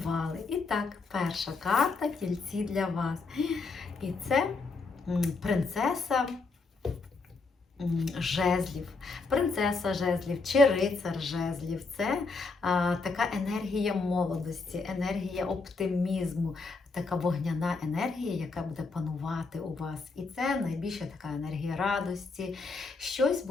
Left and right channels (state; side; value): quieter; right; 4.0 dB